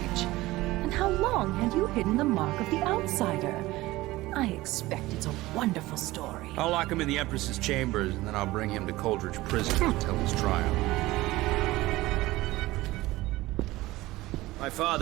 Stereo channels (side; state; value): left; quieter; 18.5 dB